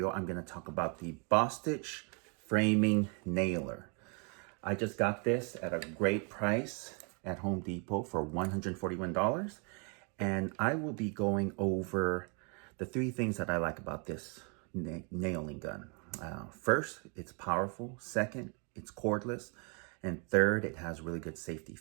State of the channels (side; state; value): left; quieter; 36.3 dB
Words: I'm going to talk about the Bostitch framing nailer. I just got this at a great price at Home Depot for $141. And I will be going over the three things that I like about this nailing gun. First, it's powerful. Second, it's cordless. And third, it has really good safety